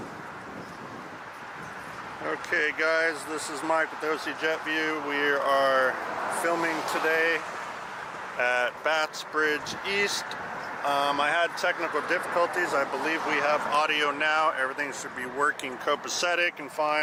Okay guys, this is Mike with OCjetview. We are filming today at Baths Bridge East. I had technical difficulties. I believe we have audio now. Everything should be working copacetic and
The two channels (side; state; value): both; identical; correlation 1.00